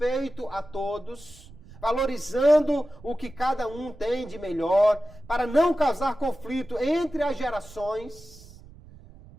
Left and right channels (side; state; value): right; noise; rumble, 21 dB below the sound